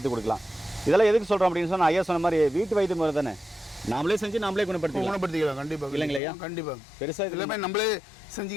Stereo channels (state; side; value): drops out; right; at 6.2 s